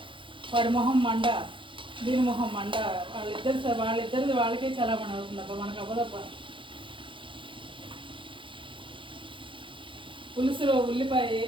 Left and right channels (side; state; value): left; late; 0.25 ms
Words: వాడి మొహం మండ, దీని మొహం మండ. వాళ్ళిద్దరిది వాళ్ళకే చాలా మన అవుతుందబ్బా, మనకు అవ్వదబ్బా. పులుసులో ఉల్లిపాయ